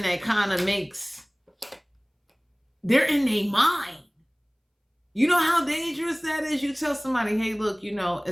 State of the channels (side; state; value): both; identical; correlation 1.00